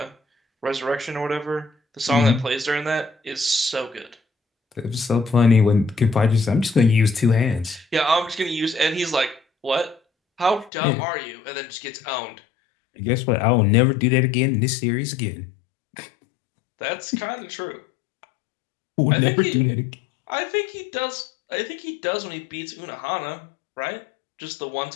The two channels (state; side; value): drops out; right; at 10.7 s